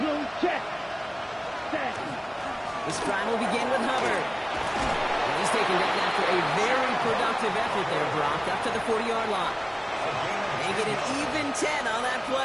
check. Set. This drive will begin with Hubbard. And he He's taken down after a very productive effort there, Brock, up to the 40-yard line. They get an even 10 on that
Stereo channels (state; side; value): identical; both; correlation 1.00